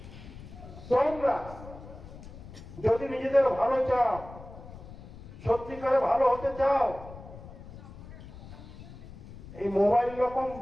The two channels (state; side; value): noise; left; rumble, 15 dB below the sound